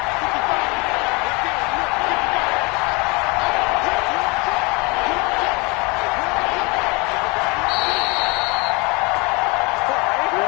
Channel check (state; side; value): quieter; right; 27.8 dB